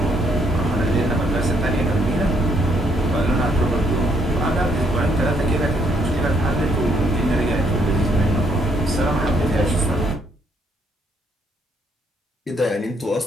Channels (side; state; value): both; normal; correlation 0.70